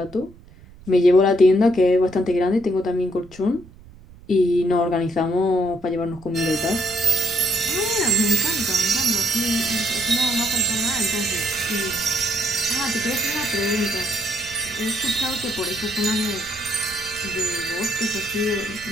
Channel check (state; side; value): noise; right; rumble, 21 dB below the sound